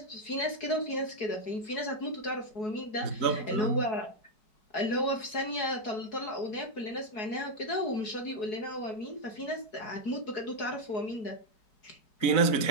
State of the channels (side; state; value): right; late; 4.7 ms